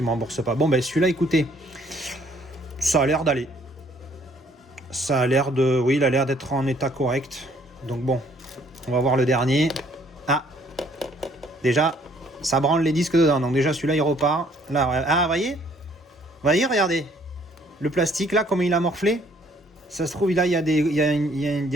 ne me remboursent pas. Bon ben celui-là écoutez, ça a l'air d'aller. Ça a l'air de... Oui il a l'air d'être en état correct. Donc bon, on va voir le dernier. Ah, déjà ça branle les disques dedans. Donc déjà celui-là il repart. Là, ah voyez, regardez. Le plastique là comment il a morflé. Ça se trouve là il y a des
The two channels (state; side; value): normal; both; correlation 0.62